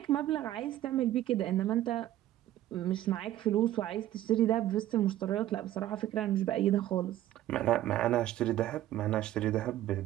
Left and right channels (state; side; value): quieter; left; 13.5 dB